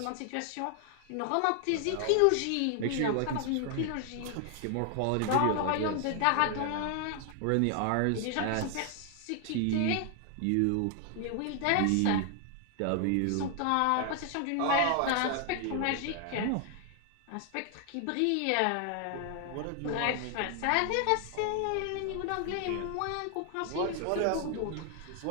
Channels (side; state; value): both; different; correlation 0.00